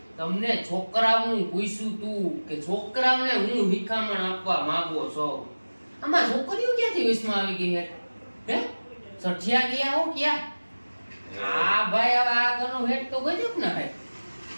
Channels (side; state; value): both; inverted; correlation -1.00